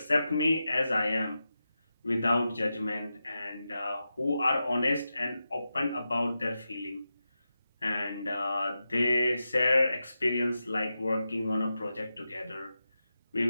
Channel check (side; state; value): both; inverted; correlation -0.90